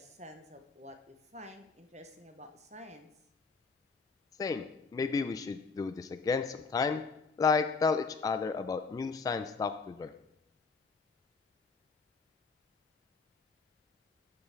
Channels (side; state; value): right; quieter; 4.6 dB